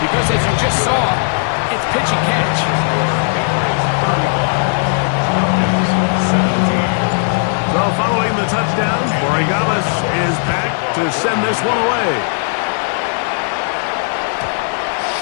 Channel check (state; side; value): silent; right; 67 dB below the other